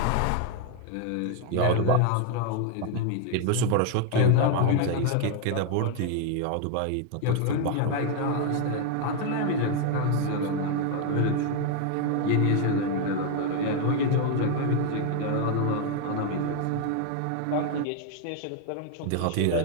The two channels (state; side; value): different; both; correlation 0.01